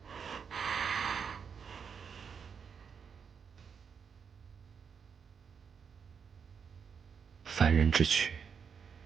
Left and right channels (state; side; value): quieter; left; 6.5 dB